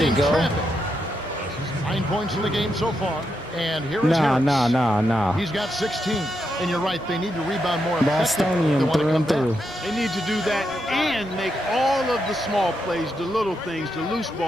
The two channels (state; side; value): normal; both; correlation 0.83